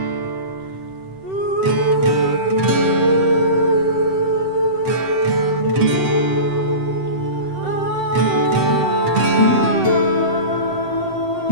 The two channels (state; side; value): late; left; 7.8 ms